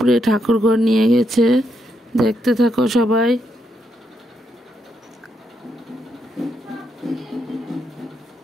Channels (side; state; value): both; normal; correlation 0.79